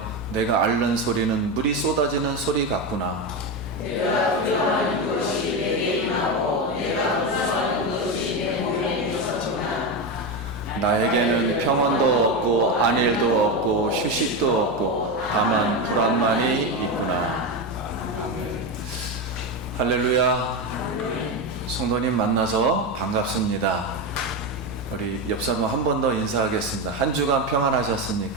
내가 앓는 소리는 물이 쏟아지는 소리 같구나. 나에게는 평안도 없고 안일도 없고 휴식도 없고 다만 불안만이 있구나. 아멘. 할렐루야. 성도님 만나서 반갑습니다. 우리 옆 사람 한 번 더 인사하겠습니다. 한 주간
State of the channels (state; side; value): normal; both; correlation 0.14